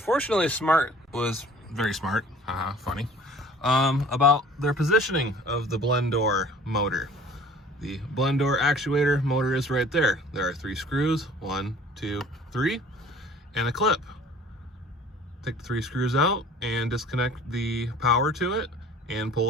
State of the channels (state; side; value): normal; both; correlation 0.49